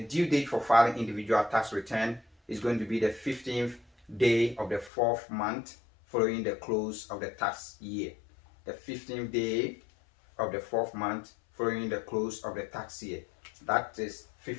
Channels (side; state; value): right; drops out; at 4.9 s